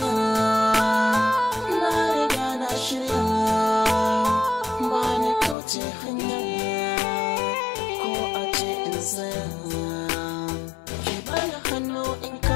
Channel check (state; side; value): drops out; right; at 5.6 s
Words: na riga na shirya, ba ni kauce hanya, ko a ce in tsaya. Ki bani hannu in